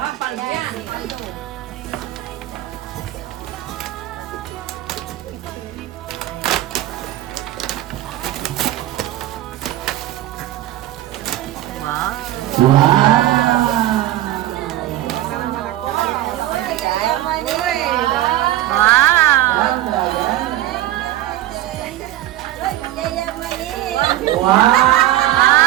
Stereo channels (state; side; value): quieter; left; 14.4 dB